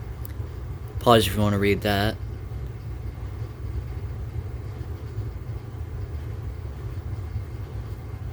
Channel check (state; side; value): identical; both; correlation 1.00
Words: Pause if you want to read that.